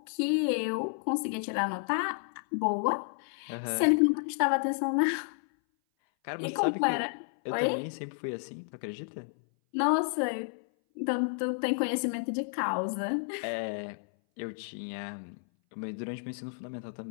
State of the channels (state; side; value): silent; right; 57 dB below the other